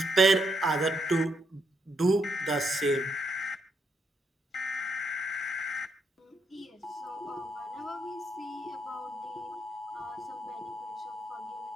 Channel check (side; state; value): both; normal; correlation 0.77